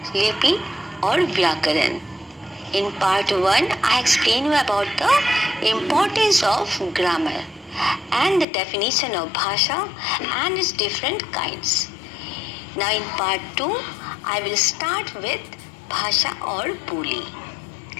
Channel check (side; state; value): right; drops out; at 8.5 s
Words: Lipi or Vyakaran. In part 1, I explain you about the importance of grammar and the definition of Bhasha and its different kinds. Now in part 2, I will start with भाषा और बोली।